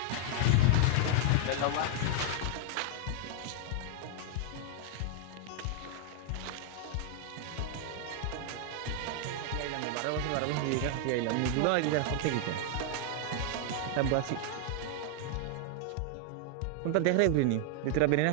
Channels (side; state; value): both; different; correlation 0.00